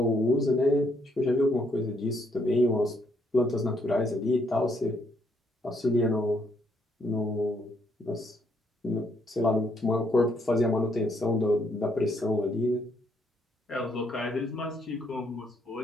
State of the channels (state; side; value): normal; both; correlation 0.72